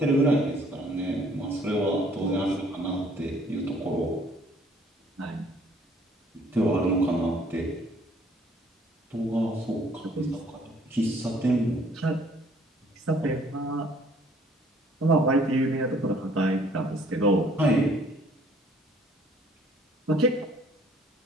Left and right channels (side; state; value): both; normal; correlation 0.59